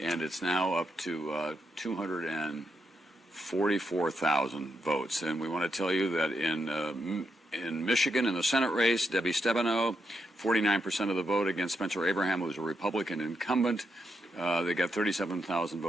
it's now up to 244,000 votes. And we want to tell you that in Michigan, in the Senate race, Debbie Stabenow, 49% of the vote against Spencer Abraham, who was a Republican incumbent. They got 37,000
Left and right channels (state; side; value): normal; both; correlation 0.82